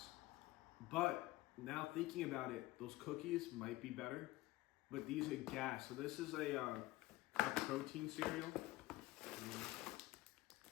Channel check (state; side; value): quieter; right; 18.4 dB